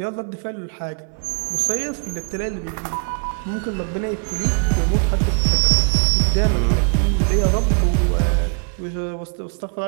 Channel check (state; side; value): quieter; left; 38.6 dB